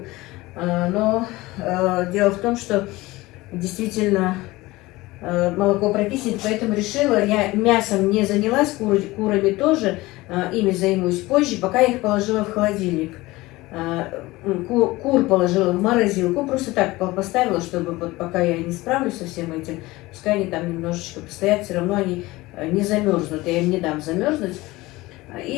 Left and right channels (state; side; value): quieter; right; 19.9 dB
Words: Но дело в том, что действительно молоко прокиснет, поэтому решила, я мясом не занялась, курами тоже, ими займусь позже, пока я их положила в холодильник. Кур положила в морозилку, просто так поставила, чтобы вот пока я не справлюсь со всем этим, пускай они там немножечко постоят, все равно они не замерзнут, я им не дам замерзнуть.